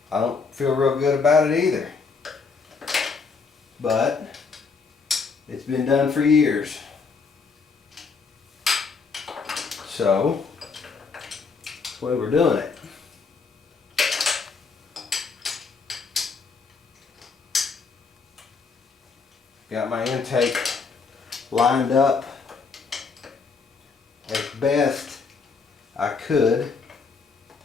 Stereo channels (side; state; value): right; quieter; 4.9 dB